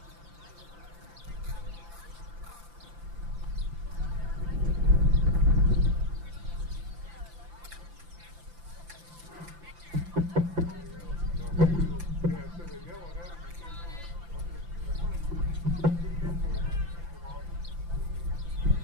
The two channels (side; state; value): left; late; 5.9 ms